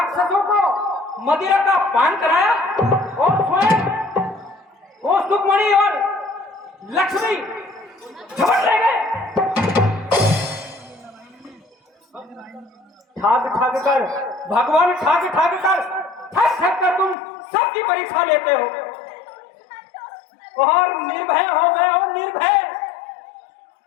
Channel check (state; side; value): drops out; right; at 17.2 s